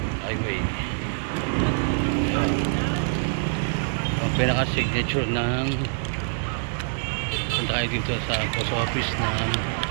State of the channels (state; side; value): silent; left; 62 dB below the other